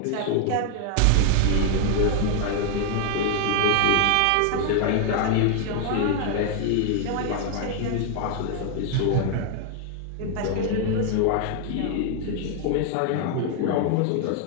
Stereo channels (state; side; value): different; both; correlation 0.00